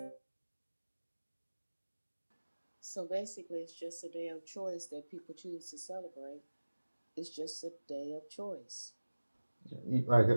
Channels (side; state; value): both; inverted; correlation -1.00